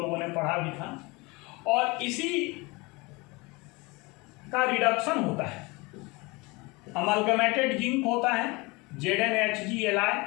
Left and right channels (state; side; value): quieter; right; 25.2 dB